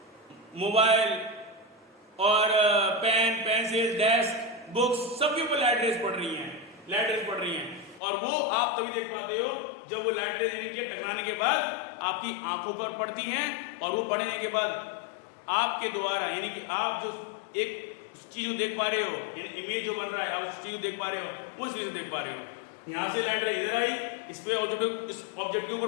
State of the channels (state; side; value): drops out; right; at 8.0 s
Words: मोबाइल और पेन, पेंसिल, डेस्क, बुक्स सबके ऊपर लाइट रेस पड़ रही हैं, लाइट रेस पड़ रही हैं, और वो आप तभी देख पाते हो जब वो लाइट रेस यानी कि टकराने के बाद आपकी आंखों पर पड़ती हैं, और वो पड़ने के बाद आपके द्वारा यानी कि आप जो एक चीज को देख पा रहे हो, यानी इमेज जो बन रहा है आप उस चीज को देख पा रहे हो, उस चीज को देख पा रहे हो। यहां से लाइट रे इधर आई, इस पे ऑब्जेक्ट, इस ऑब्जेक्ट के